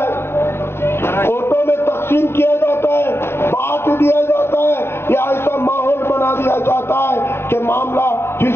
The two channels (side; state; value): right; late; 0.12 ms